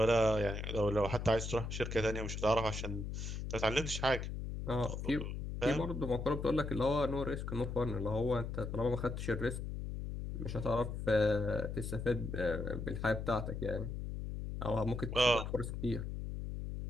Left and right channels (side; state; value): left; noise; hum, 5 dB below the sound